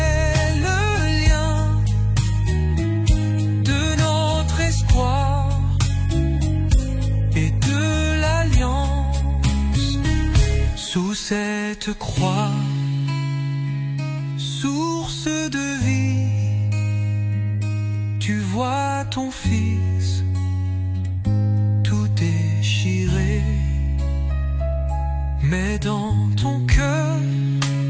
le lien de notre espoir et de l'alliance. Sous cette croix, source de vie, tu vois ton Fils tout déchiré, mais dans ton cœur,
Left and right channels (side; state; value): both; identical; correlation 1.00